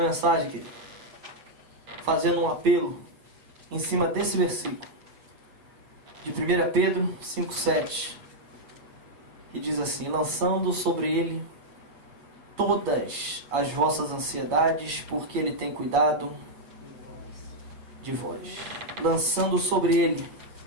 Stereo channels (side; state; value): left; late; 8.3 ms